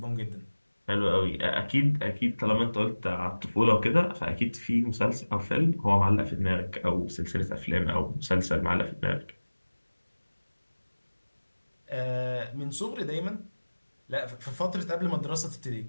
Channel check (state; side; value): inverted; both; correlation -1.00